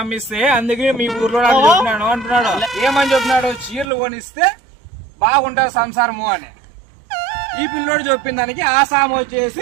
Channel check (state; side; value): drops out; left; at 3.9 s